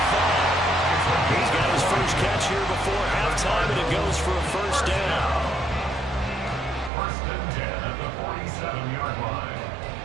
He's got his first catch here before halftime, and it goes for a first down. First and 10 at the 47-yard line.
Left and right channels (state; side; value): drops out; left; at 6.9 s